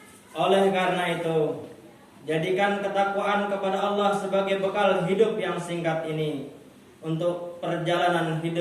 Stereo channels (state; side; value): identical; both; correlation 1.00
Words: Oleh karena itu, jadikan ketakwaan kepada Allah sebagai bekal hidup yang singkat ini untuk perjalanan